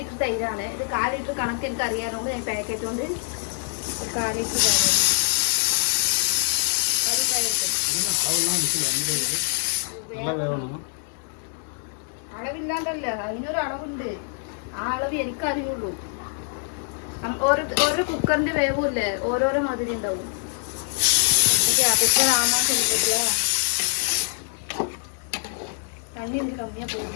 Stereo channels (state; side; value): silent; right; 62 dB below the other